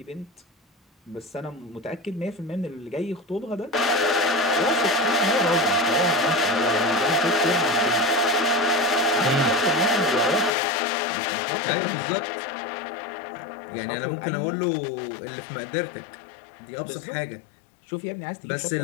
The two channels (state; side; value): drops out; right; at 10.5 s